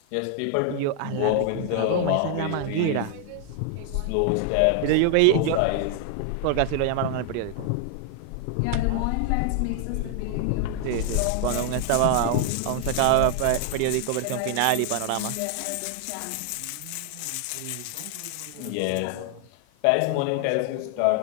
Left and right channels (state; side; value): different; both; correlation 0.00